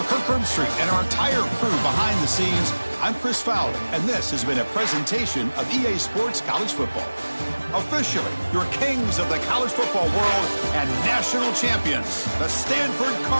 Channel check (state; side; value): inverted; both; correlation -1.00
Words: Kirk Herbstreit and our entire crew behind the scenes, I'm Chris Fowler, and this has been a presentation of EA Sports College Football. Officially, your kings of the college football world and national champions, the Stanford